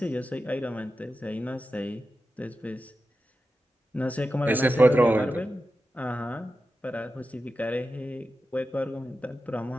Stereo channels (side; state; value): both; normal; correlation 0.92